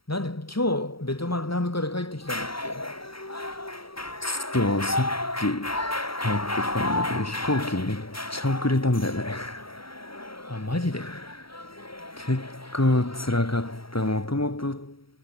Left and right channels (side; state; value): right; late; 0.75 ms